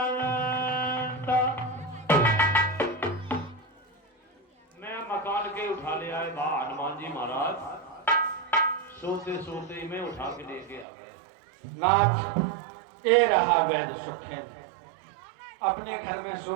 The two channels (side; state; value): left; drops out; at 10.9 s